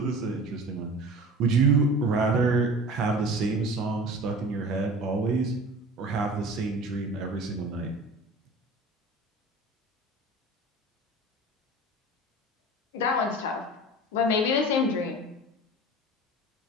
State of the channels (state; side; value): normal; both; correlation 0.38